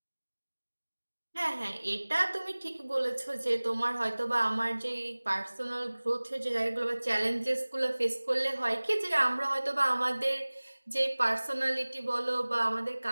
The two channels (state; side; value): inverted; both; correlation -1.00